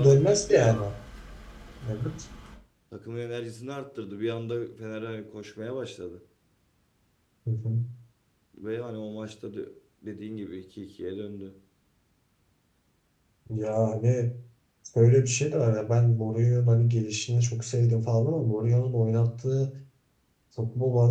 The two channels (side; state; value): both; identical; correlation 1.00